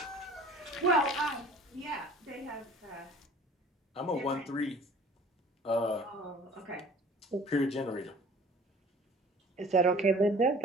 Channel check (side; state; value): both; normal; correlation 0.48